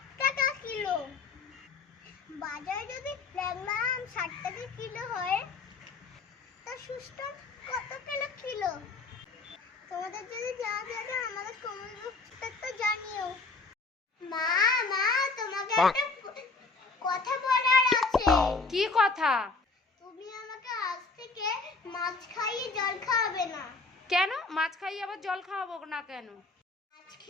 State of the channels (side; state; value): right; quieter; 4.0 dB